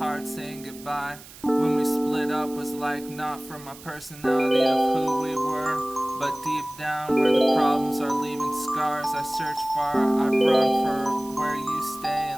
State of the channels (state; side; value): noise; right; hiss, 18 dB below the sound